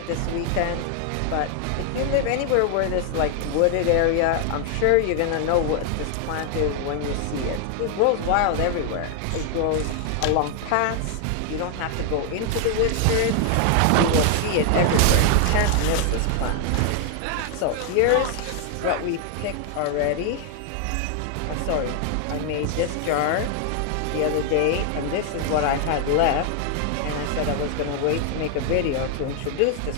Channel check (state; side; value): different; both; correlation 0.00